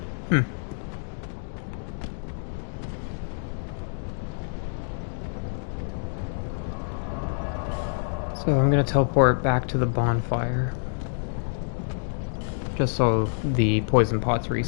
So I'm gonna teleport back to the bonfire. Just so the poison pots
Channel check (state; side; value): silent; right; digital silence